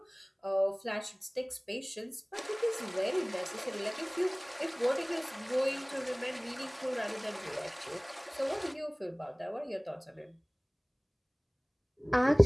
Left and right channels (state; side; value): identical; both; correlation 1.00